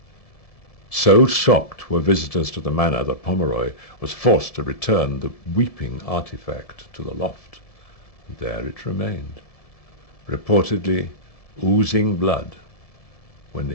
So shocked were visitors to the manor that Pomeroy was forced to return the weeping artifact to the loft. There it remained, reportedly oozing blood, when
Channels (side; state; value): right; late; 1.7 ms